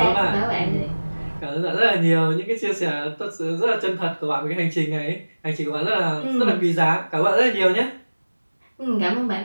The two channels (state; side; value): inverted; both; correlation -1.00